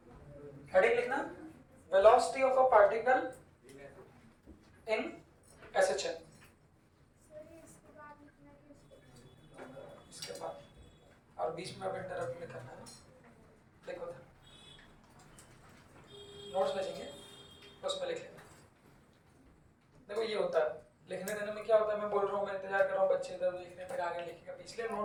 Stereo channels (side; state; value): both; identical; correlation 1.00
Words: हेडिंग लिखना velocity of a particle in SHM. इसके बाद और बीच में अब इंटरप्ट नहीं करना है। देखो था नोट्स भेजेंगे उसमें लिख लेना। देखो ये होता है लिखने देने में क्या होता है, मैं बोल रहा हूँ, मैं इंतजार कर रहा हूँ, बच्चे इधर लिखने पर आगे लिखेगा, इसलिए